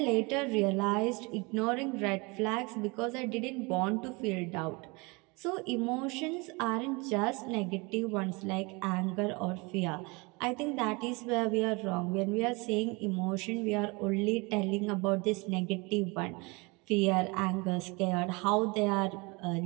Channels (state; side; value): quieter; left; 27.5 dB